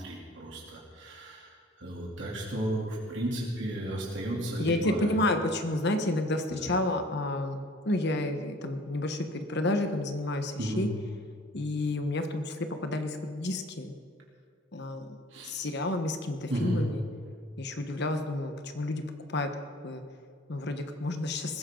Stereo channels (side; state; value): both; normal; correlation 0.51